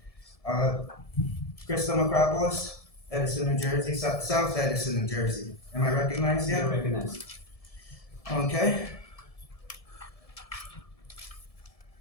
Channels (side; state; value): right; late; 1.7 ms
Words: Crystal Macropolis, Edison, New Jersey, South Edison, New Jersey. Am I recognized yet? You're recognized. Okay.